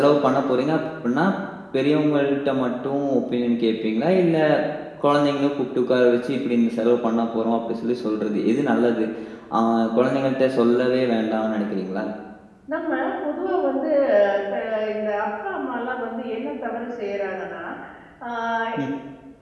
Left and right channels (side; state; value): both; identical; correlation 1.00